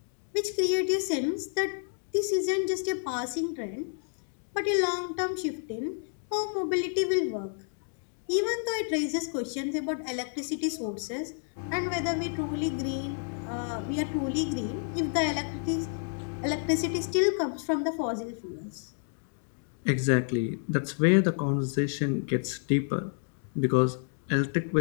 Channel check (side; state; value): right; silent; 58 dB below the other